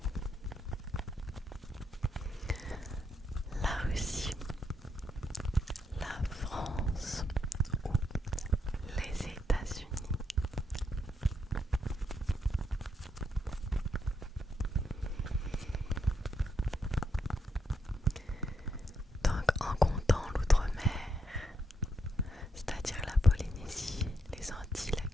La Russie, la France ou les États-Unis? Donc en comptant l'outre-mer, c'est-à-dire la Polynésie, les Antilles, la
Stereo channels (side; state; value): both; normal; correlation 0.79